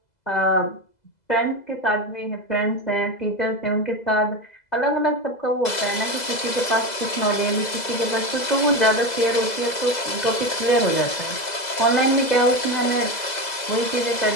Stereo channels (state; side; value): late; right; 2.0 ms